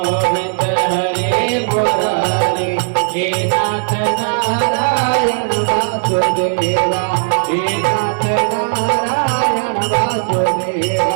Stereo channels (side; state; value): left; silent; 69 dB below the other